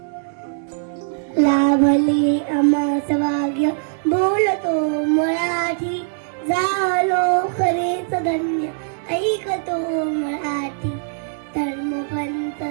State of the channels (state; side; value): silent; left; digital silence